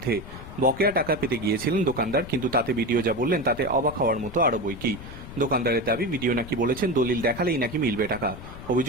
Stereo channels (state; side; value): noise; left; rumble, 13 dB below the sound